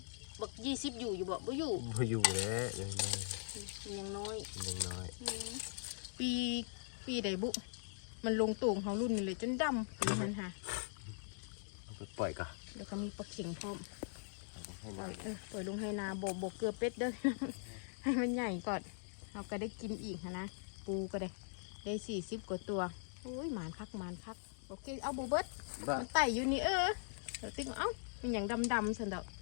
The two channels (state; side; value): silent; right; digital silence